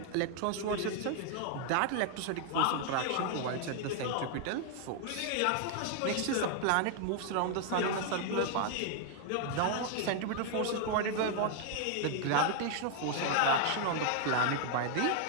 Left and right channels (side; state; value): both; different; correlation 0.00